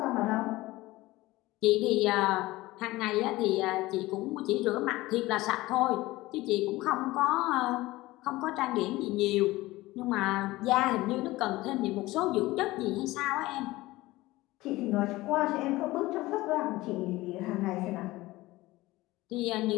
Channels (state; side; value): quieter; right; 18.9 dB